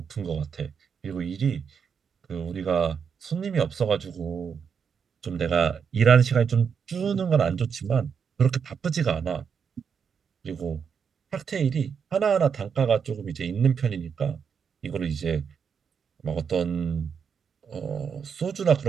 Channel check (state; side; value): quieter; left; 6.7 dB